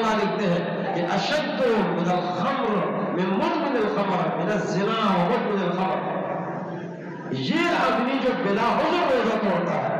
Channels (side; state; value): both; identical; correlation 1.00